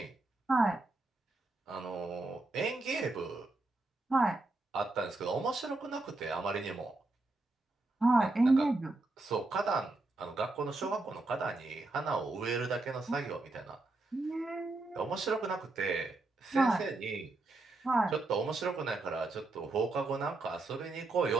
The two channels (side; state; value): left; quieter; 3.1 dB